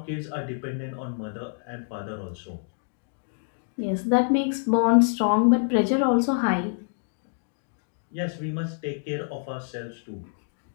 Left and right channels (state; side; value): silent; right; digital silence